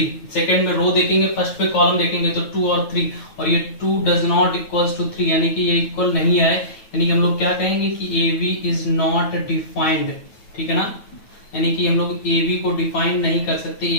सेकंड में रो देखेंगे, फर्स्ट पे कॉलम देखेंगे तो 2 और 3, और ये 2 डज नॉट इक्वल्स टू 3, यानी कि ये इक्वल नहीं है, यानी कि हम लोग क्या कहेंगे कि AB इज नॉट डिफाइंड, ठीक है ना, यानी कि हम लोग AB को डिफाइन नहीं कर सकते,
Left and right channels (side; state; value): right; late; 9.2 ms